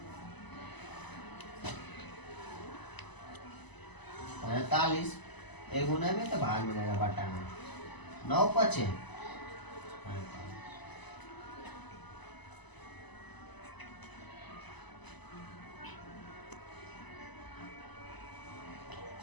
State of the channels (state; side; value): late; right; 1.0 ms